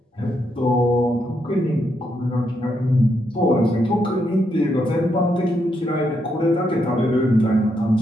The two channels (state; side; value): normal; both; correlation 0.79